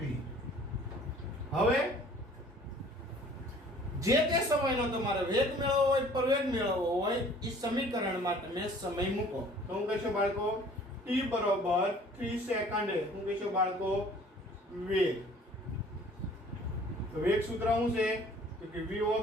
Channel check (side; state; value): both; normal; correlation 0.52